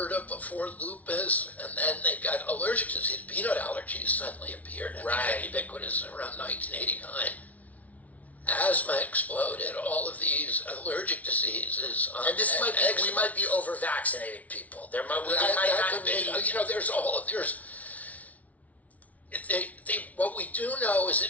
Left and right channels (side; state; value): right; late; 0.070 ms